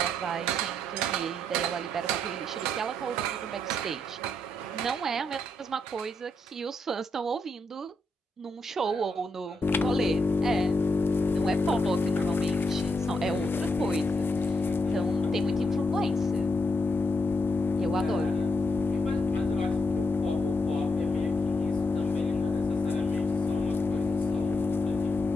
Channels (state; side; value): normal; both; correlation 0.81